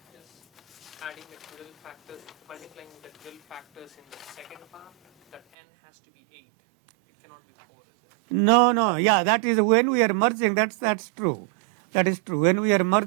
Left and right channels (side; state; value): left; drops out; at 5.4 s